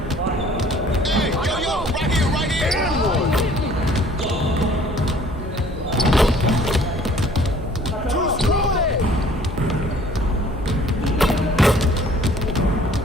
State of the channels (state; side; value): normal; both; correlation 0.55